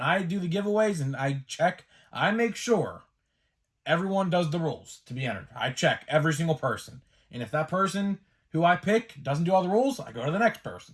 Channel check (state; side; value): identical; both; correlation 1.00